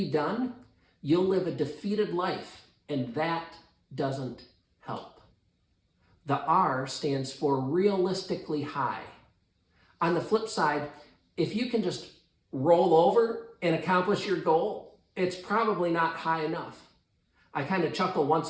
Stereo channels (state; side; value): identical; both; correlation 1.00